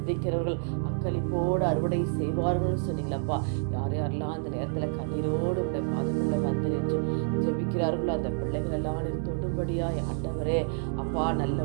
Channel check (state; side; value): silent; left; digital silence